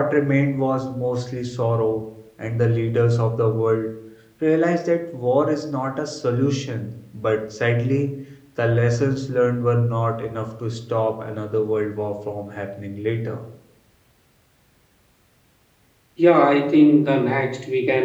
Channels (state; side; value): identical; both; correlation 1.00